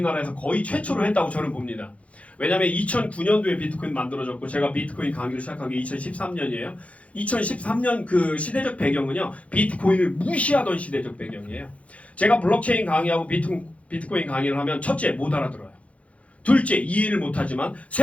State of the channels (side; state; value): right; late; 0.064 ms